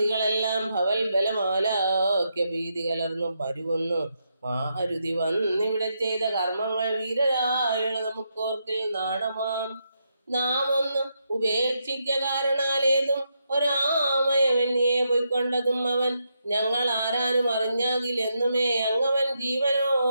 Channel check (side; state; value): both; inverted; correlation -0.82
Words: ഭവൽ ബലമാലാക്യ ഭീതി കലർന്നു പരുവുന്നു. മാരുതി വന്നിവിടെ ചെയ്ത കർമ്മങ്ങൾ വീരരായുള്ള നമുക്കോർക്കിൽ നാണമാം. നാം ഒന്ന് ഉപേക്ഷിക്ക കാരണാലേതും ഒരാമയവന്യെ പൊയ്ക്കൊണ്ടതും അവൻ. ഞങ്ങൾ ആരാനും അറിഞ്ഞാകിലെന്നുമേ അങ്ങവൻ